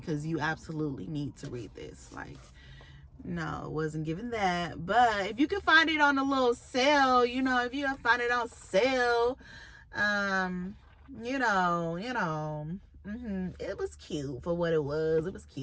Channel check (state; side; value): identical; both; correlation 1.00